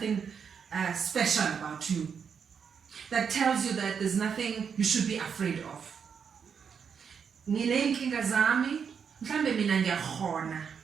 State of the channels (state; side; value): quieter; left; 6.8 dB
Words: special about you. That tells you that there's nothing you should be afraid of. Nginenkinga zami, mhlambe mina ngiyakhona.